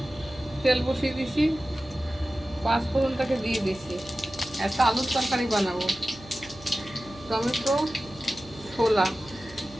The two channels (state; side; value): noise; right; hum, 20 dB below the sound